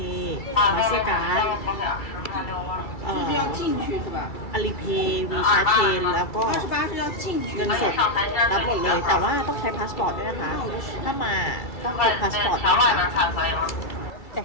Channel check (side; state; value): right; late; 2.3 ms